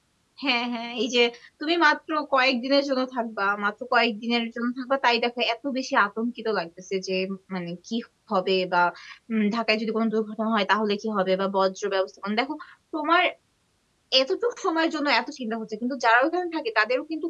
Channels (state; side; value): identical; both; correlation 1.00